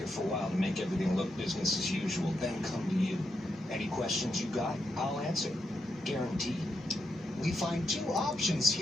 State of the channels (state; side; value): normal; both; correlation 0.84